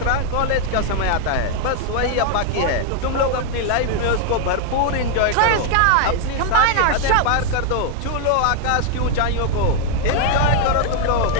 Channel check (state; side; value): different; both; correlation 0.00